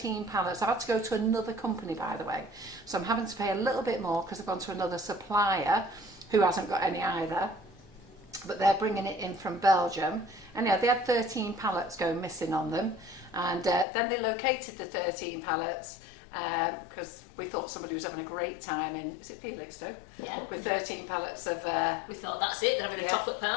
pallets. I've had to go to another company, by the way. So I'm having to pay a little bit more because I've gone to another supplier who hasn't got any either. But they're bringing it in from Belgium. And yeah, they had 13 pallets going missing on them. And then they located the 13 pallets because we thought somebody was having a great time in, is it Felixstowe? Yeah. With 13 pallets of... we thought, that's it, they're having a chocolate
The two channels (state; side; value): drops out; right; at 13.9 s